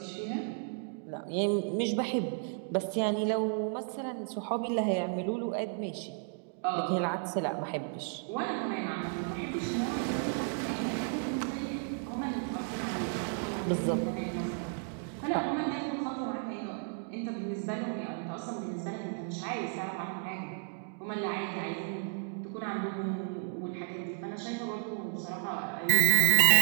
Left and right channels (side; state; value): left; silent; 56 dB below the other